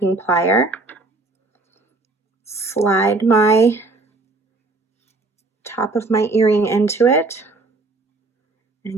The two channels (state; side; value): quieter; left; 3.3 dB